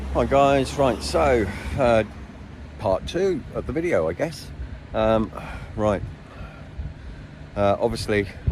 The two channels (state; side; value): identical; both; correlation 1.00